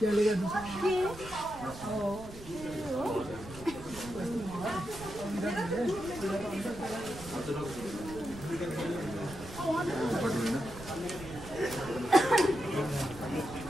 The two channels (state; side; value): noise; right; rumble, 14 dB below the sound